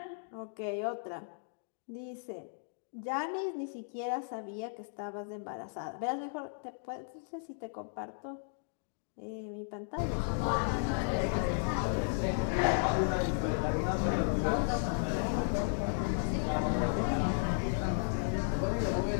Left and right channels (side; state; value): right; silent; digital silence